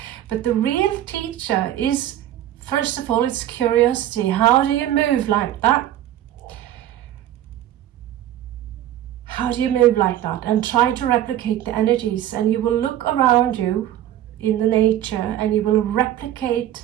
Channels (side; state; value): left; quieter; 12.4 dB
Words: But the real teacher is, first of all, it's curiosity. How do you move like that? How do you move like that? And try to replicate the energies. And you will look around you in the nature and you will